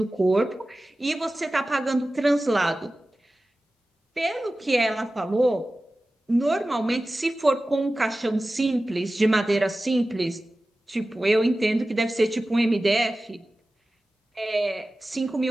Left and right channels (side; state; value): both; normal; correlation 0.96